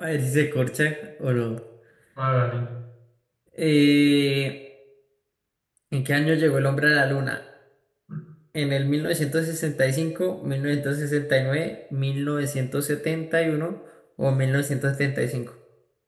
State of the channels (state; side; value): identical; both; correlation 1.00